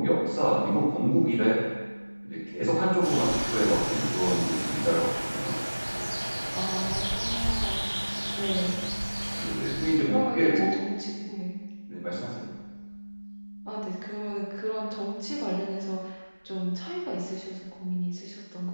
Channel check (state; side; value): inverted; both; correlation -1.00